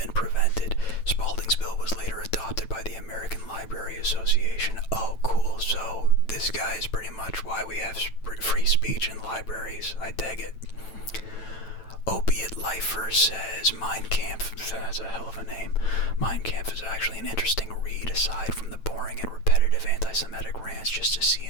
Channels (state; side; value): late; right; 9.0 ms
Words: prevented. Spaulding's bill was later adopted by the American Library Association. Oh, cool. So this guy is pretty much why we have free speech in libraries. I dig it. Opiate Lifer says Mein Kampf, that's a hell of a name. Mein Kampf is actually an interesting read aside from the boring and repetitive anti